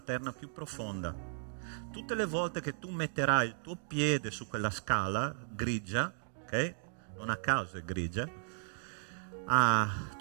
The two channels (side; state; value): left; silent; digital silence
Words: più profonda. Tutte le volte che tu metterai il tuo piede su quella scala grigia, ok? Non a caso è grigia,